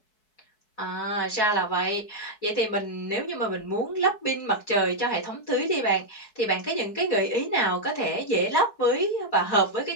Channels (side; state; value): right; late; 4.7 ms